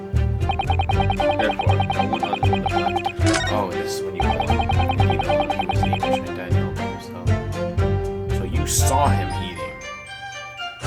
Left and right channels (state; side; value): identical; both; correlation 1.00